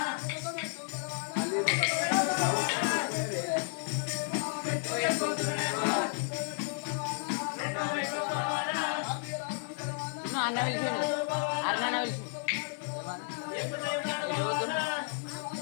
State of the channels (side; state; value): right; silent; 56 dB below the other